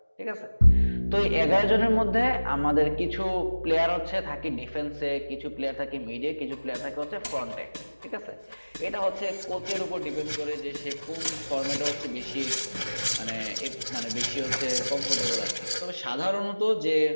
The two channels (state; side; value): inverted; both; correlation -1.00